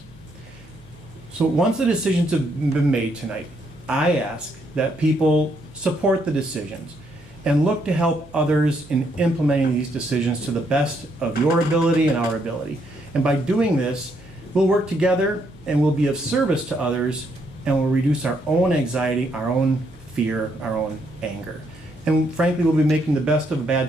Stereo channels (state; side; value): noise; right; hum, 25 dB below the sound